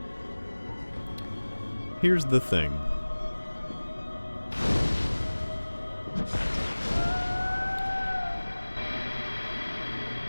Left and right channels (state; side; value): inverted; both; correlation -1.00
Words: Here's the thing.